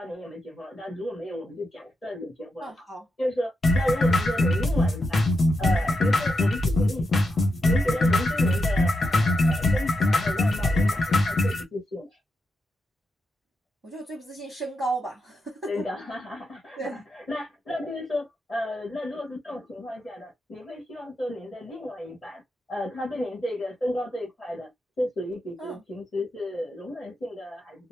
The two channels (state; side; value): normal; both; correlation 0.86